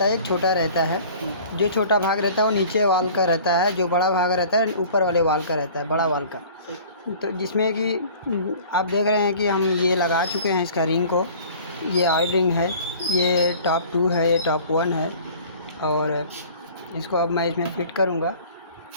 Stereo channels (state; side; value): inverted; both; correlation -0.47